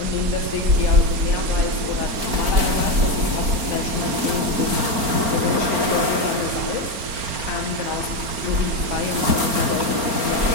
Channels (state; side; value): late; left; 4.4 ms